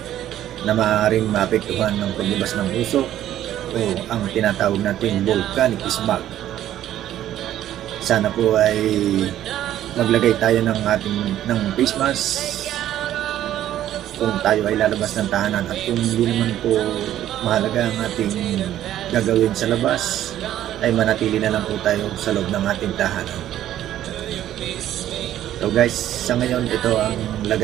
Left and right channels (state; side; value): quieter; left; 12.2 dB